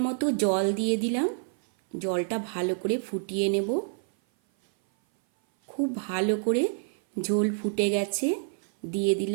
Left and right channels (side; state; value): left; silent; 57 dB below the other